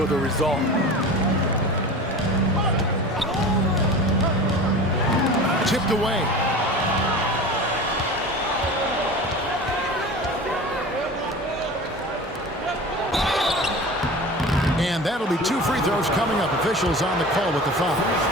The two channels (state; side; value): normal; both; correlation 0.35